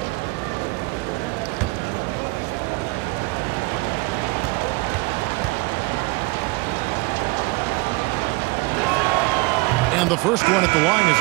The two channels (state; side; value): quieter; left; 24.6 dB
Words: And the first one at the line is